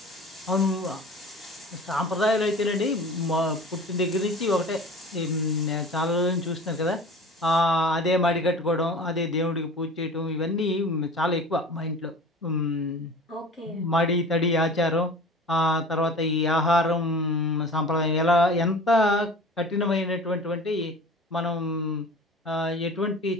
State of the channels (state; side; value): normal; both; correlation 0.40